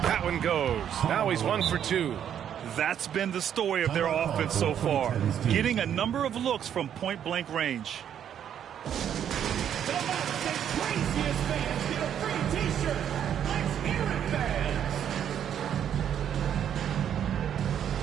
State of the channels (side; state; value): left; quieter; 9.4 dB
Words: That one goes. Now he's 1 for 2. That's been the story of their offense so far, getting a number of looks from point-blank range.